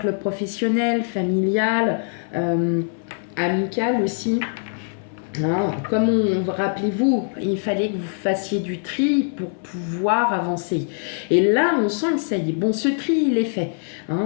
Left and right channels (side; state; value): right; silent; 64 dB below the other